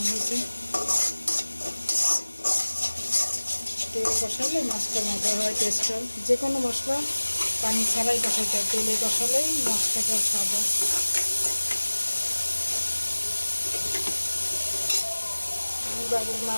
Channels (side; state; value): both; inverted; correlation -1.00